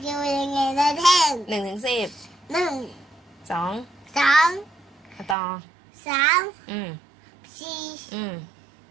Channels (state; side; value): drops out; left; at 5.4 s